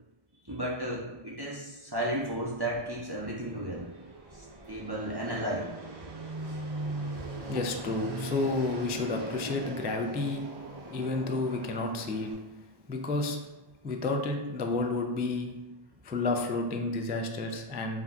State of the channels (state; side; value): late; left; 1.1 ms